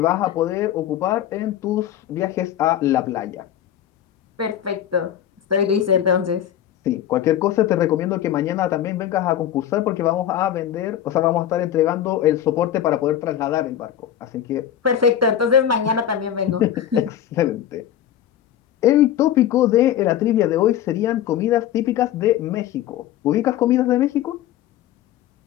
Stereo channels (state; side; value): quieter; right; 10.7 dB